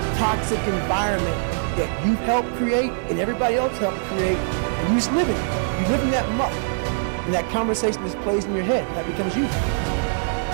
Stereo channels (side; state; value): left; silent; digital silence